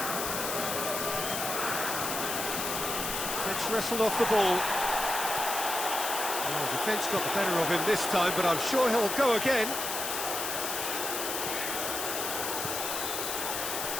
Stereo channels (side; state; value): left; noise; hiss, 3 dB below the sound